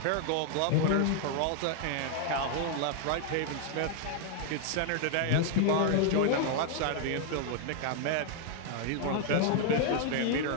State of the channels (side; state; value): both; different; correlation 0.00